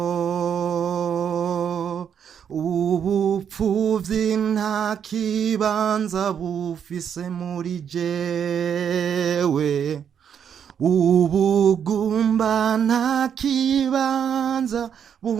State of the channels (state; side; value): quieter; left; 8.1 dB